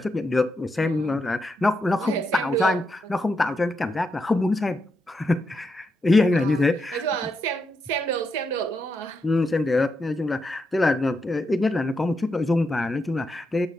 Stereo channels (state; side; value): normal; both; correlation 0.83